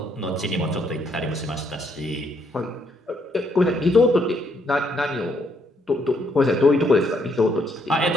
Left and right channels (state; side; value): normal; both; correlation 0.72